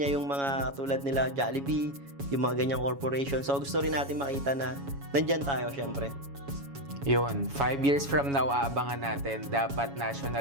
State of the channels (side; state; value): left; late; 7.2 ms